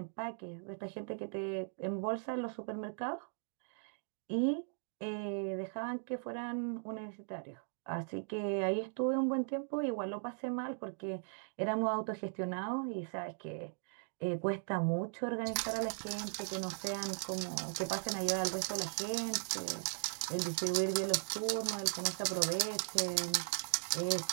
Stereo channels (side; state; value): left; silent; digital silence